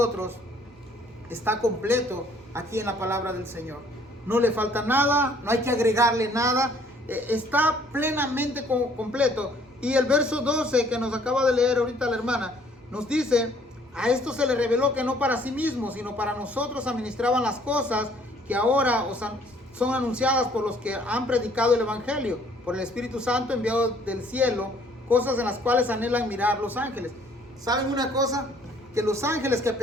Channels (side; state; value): both; normal; correlation 0.61